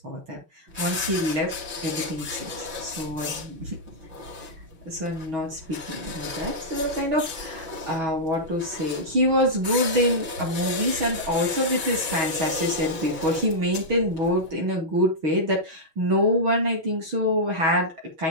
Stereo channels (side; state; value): left; late; 6.0 ms